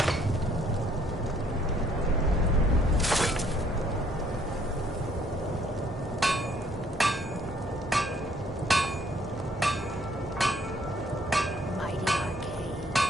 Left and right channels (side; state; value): both; normal; correlation 0.64